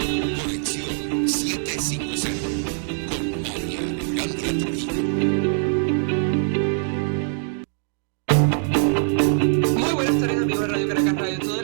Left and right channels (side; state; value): left; silent; 63 dB below the other